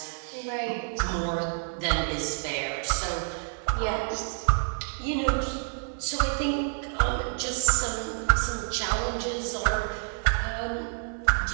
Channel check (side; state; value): left; silent; 59 dB below the other